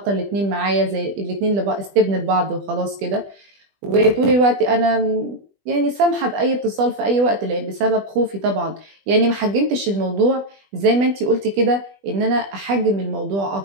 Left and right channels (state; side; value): late; left; 20 ms